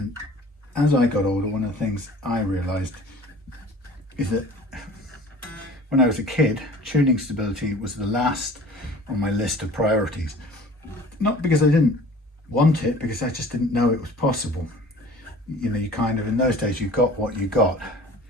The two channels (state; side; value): normal; both; correlation 0.45